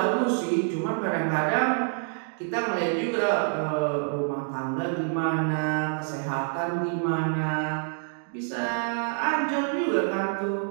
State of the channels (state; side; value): silent; left; 60 dB below the other